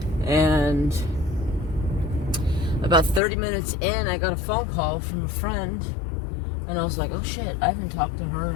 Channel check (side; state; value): right; drops out; at 3.2 s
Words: and about 30 minutes in, I got a phone call from a friend, and I was like, oh, shit, I haven't talked to her